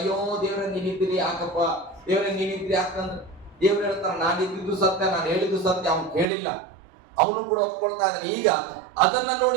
ದೇವ್ರೆ ನೀನಿದ್ದೀರಿ ಯಾಕಪ್ಪ, ದೇವ್ರೆ ನೀನಿದ್ರಿ ಯಾಕಂದ್ರೆ ದೇವ್ರು ಹೇಳ್ತಾರ ನಾನು ಇದ್ದಿದ್ದು ಸತ್ಯ, ನಾನು ಹೇಳಿದ್ದು ಸತ್ಯ, ಅವ್ನು ಕೇಳಿಲ್ಲ, ಅವನು ಕೂಡ ಒಪ್ಕೊಳ್ತಾ ಇದ್ದಾನೆ. ಈಗ ಅದನ್ನ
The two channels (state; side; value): drops out; left; at 6.2 s